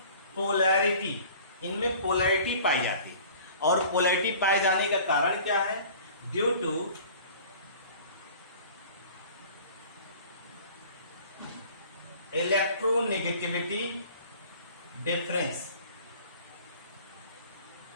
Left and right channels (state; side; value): inverted; both; correlation -0.47